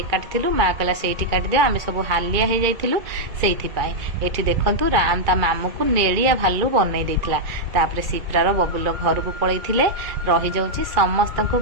काटिलु माँ कहला से काटिदे आम सब हालिया हो जाइलु से देखु राम ता मामू को नेड़िया भालू बनई देता। तापर सिप्रार बबुल घर को पलैले रही जाऊँ समस्त को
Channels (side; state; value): left; late; 2.3 ms